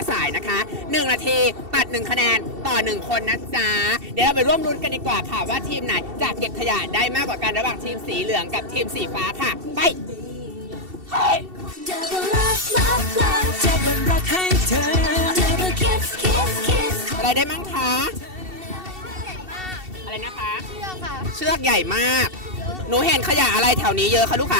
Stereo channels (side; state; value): left; late; 2.7 ms